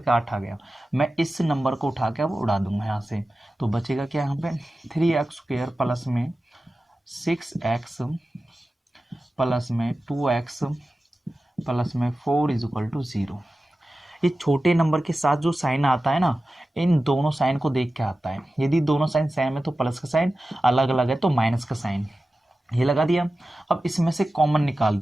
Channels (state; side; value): normal; both; correlation 0.94